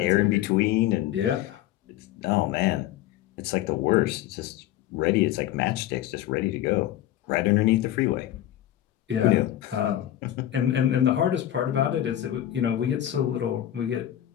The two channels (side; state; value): right; quieter; 12.8 dB